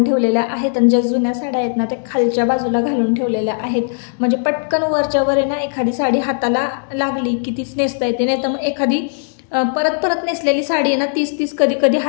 ठेवलेल्या आहेत. आणि ज्या जुन्या साड्या आहेत ना त्या खालच्या बाजूला घालून ठेवलेल्या आहेत, म्हणजे पटकन वरच्या वर आहे ना एखादी साडी हाताला लागली की तीच नेसता येते. नाही तर मग एखादी परत नेसलेली साडी आहे ना, तीच कधी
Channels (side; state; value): right; silent; 68 dB below the other